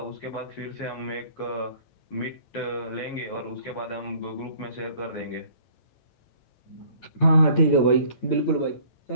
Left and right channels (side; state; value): right; late; 8.9 ms